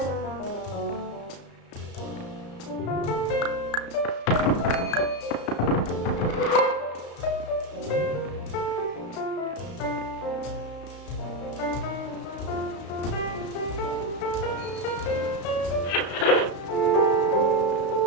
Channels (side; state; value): right; late; 34 ms